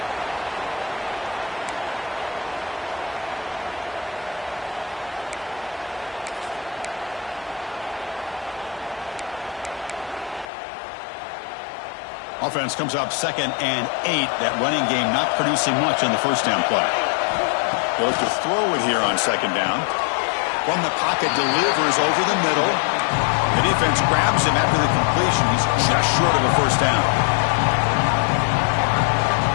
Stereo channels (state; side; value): drops out; right; at 10.5 s